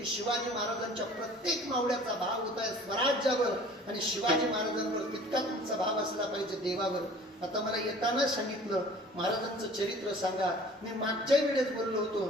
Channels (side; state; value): both; normal; correlation 0.48